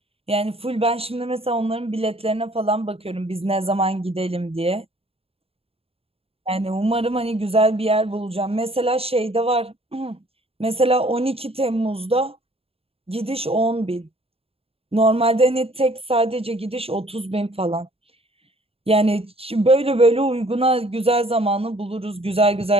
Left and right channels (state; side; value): late; left; 0.28 ms